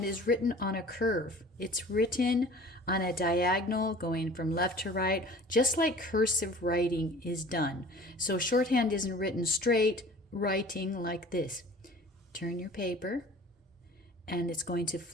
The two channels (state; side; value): normal; both; correlation 0.45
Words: is written on a curve. It's written on a diagonal going from left to right, just like cursive writing is done. So shorthand isn't written straight, writing like this. Turn your paper and it's going to